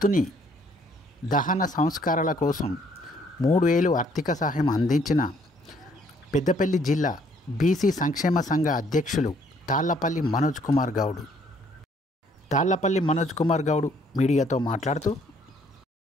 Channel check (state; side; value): normal; both; correlation 0.64